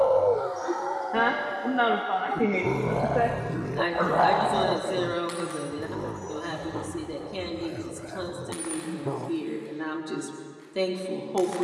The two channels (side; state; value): both; identical; correlation 1.00